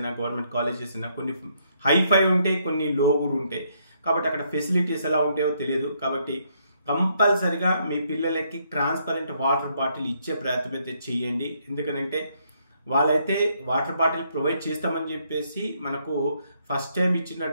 గవర్నమెంట్ కాలేజెస్ అయినా కొన్ని హైఫై ఉంటాయి, కొన్ని లో కూడా ఉంటాయి. కాబట్టి అక్కడ ఫెసిలిటీస్ ఎలా ఉంటాయో తెలియదు. కాబట్టి కంపల్సరిగా మీ పిల్లలకి ట్రాన్స్పరెంట్ వాటర్ బాటిల్ ఇచ్చే ప్రయత్నం అయితే చేయండి. ఎందుకంటే వాళ్ళైతే వాటర్ బాటిల్ ప్రొవైడ్ చేస్తామని చెప్పేసి మనకు ఫస్ట్ టైం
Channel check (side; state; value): both; inverted; correlation -0.72